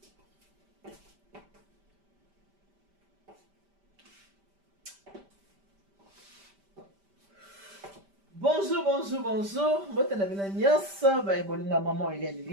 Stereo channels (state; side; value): late; left; 5.1 ms